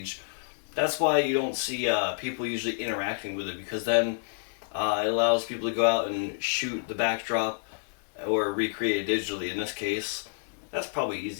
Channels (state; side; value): silent; right; digital silence